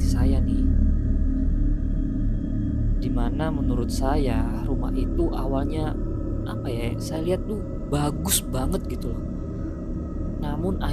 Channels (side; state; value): both; identical; correlation 1.00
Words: saya nih, dimana menurut saya rumah itu awalnya saya lihat tuh bagus banget gitu loh. Namun